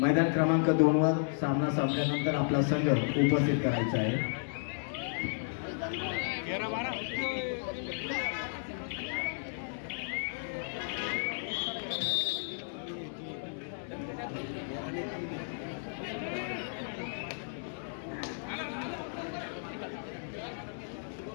मैदान क्रमांक 2 वर सामना संपल्यानंतर आपला संघ उपस्थित करायचा आहे।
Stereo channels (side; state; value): right; silent; 56 dB below the other